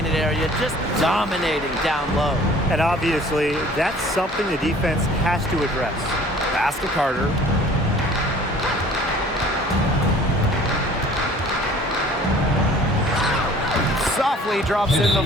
area, just dominating down low. And obviously, that's something the defense has to address. Pass to Carter. Softly drops in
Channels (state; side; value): normal; both; correlation 0.51